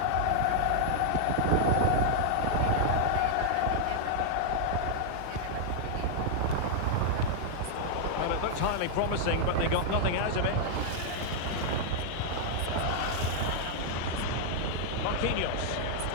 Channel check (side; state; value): both; different; correlation -0.01